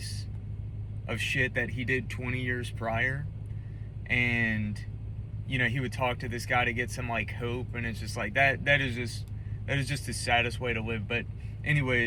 of shit that he did 20 years prior. And you know, he would talk to this guy to get some like hope, and it's just like that is just the saddest way to live. But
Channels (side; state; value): both; identical; correlation 1.00